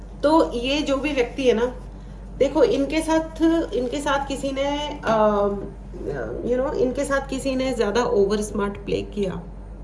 तो ये जो भी व्यक्ति है ना, देखो इनके साथ किसी ने इनके साथ किसी ने ज्यादा ओवर स्मार्ट प्ले किया,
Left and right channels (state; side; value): identical; both; correlation 1.00